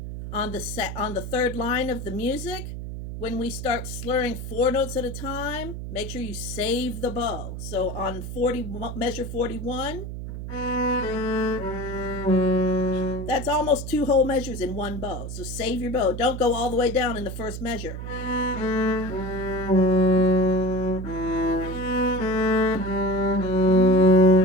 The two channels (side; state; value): right; noise; hum, 8 dB below the sound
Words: On the third line of the music, when we start slurring 4 notes at a time, make sure you save the bow. So on measure 41, that's almost 2 whole measures in one bow. So save your bow. Don't go all the way down in the first measure.